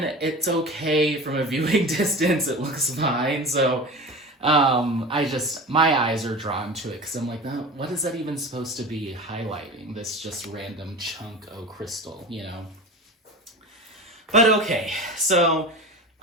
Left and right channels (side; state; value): both; normal; correlation 0.32